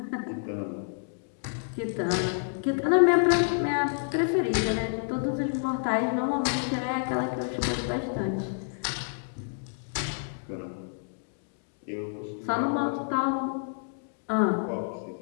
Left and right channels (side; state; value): right; silent; digital silence